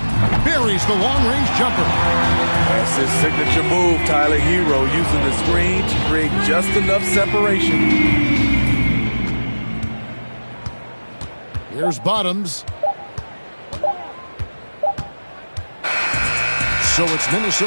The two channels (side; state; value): both; inverted; correlation -1.00